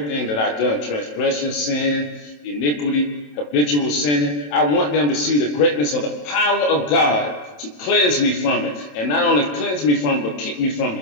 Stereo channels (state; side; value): late; right; 27 ms